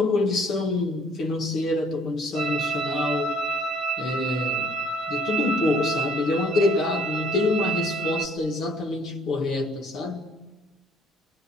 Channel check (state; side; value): normal; both; correlation 0.60